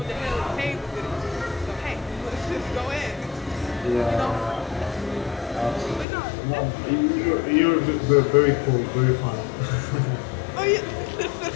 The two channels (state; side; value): drops out; right; at 6.1 s